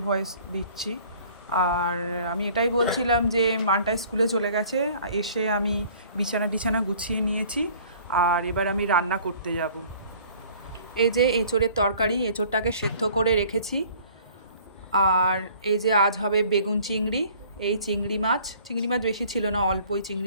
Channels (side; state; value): both; inverted; correlation -0.53